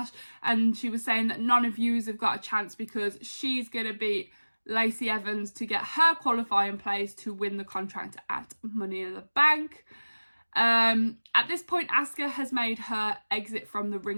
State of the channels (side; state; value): both; inverted; correlation -1.00